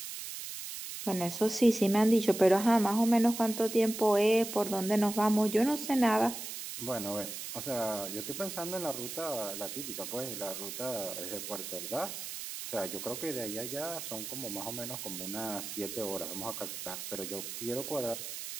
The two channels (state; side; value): noise; right; hiss, 8 dB below the sound